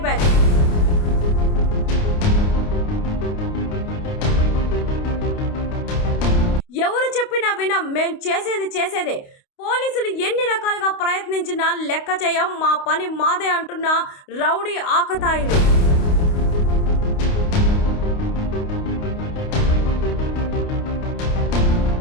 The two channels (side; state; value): right; late; 29 ms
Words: బ్యాచ్. ఎవరు చెప్పినా వినం, మేం చేసేదే. పోలీసులు ఎన్ని రకాలుగా ప్రయత్నించినా లెక్క చేయం, మా పని మాదే అంటున్న రౌడీ ఆకతాయిలు.